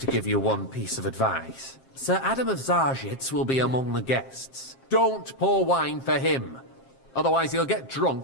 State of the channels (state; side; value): late; right; 7.5 ms